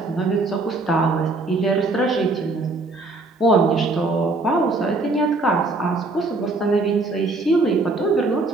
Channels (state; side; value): quieter; left; 3.2 dB